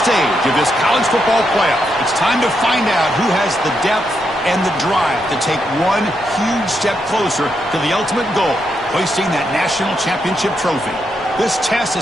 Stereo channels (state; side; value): noise; left; rumble, 26 dB below the sound